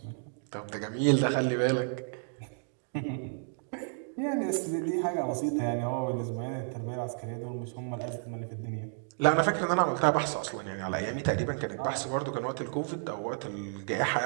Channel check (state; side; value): silent; left; digital silence